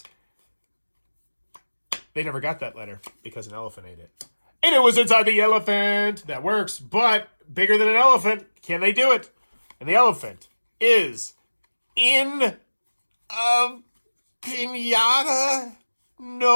They never got that letter because an elephant ate it. And it was inside the elephant. That works, but bigger than an elephant. Can they do it? And the elephant is in a pinata.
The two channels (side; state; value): both; inverted; correlation -1.00